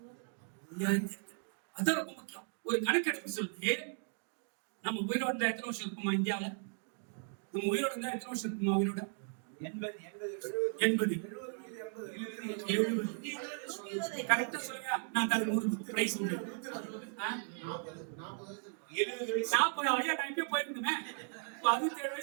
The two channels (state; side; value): silent; left; 53 dB below the other